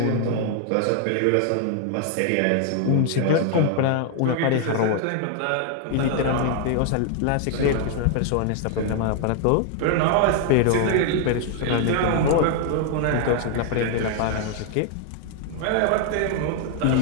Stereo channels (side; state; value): both; different; correlation 0.00